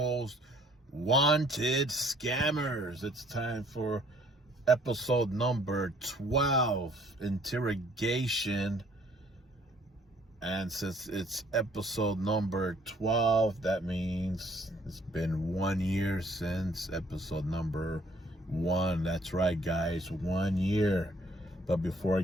Wanted Scammers. It's time for episode number 12, Interrogation. And since it's episode number 12, that means it's been 1 year since episode number 1. That's right, guys, 1 year. But before I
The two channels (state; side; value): normal; both; correlation 0.61